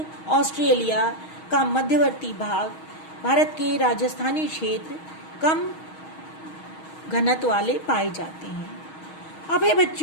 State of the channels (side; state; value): right; late; 6.3 ms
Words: ऑस्ट्रेलिया का मध्यवर्ती भाग, भारत के राजस्थानी क्षेत्र कम घनत्व वाले पाए जाते हैं। अब है